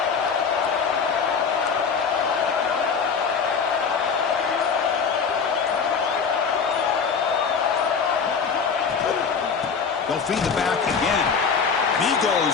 They'll feed the back again. And he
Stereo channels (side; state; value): right; quieter; 5.9 dB